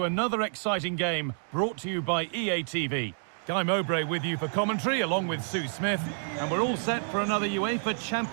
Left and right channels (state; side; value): silent; left; digital silence